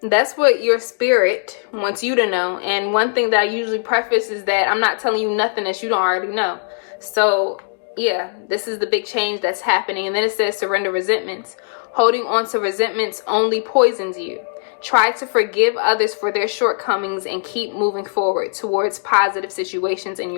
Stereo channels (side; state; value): right; silent; digital silence